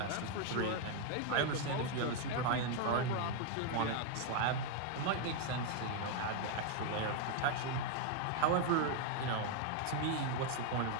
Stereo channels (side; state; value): both; different; correlation 0.00